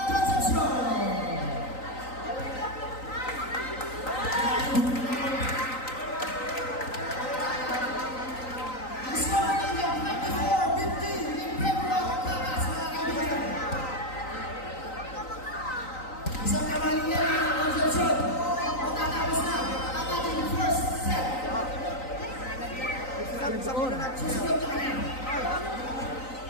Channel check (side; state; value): right; late; 3.9 ms